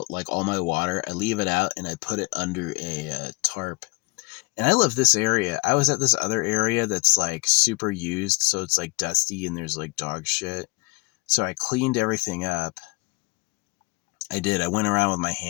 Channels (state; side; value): quieter; right; 28.1 dB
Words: like all my water. I leave it out and I put it under a tarp. And I love this area. I was at this other area that's like super used, so it's like dusty and there's like dog shit. So I cleaned everything up. I did. I went around with my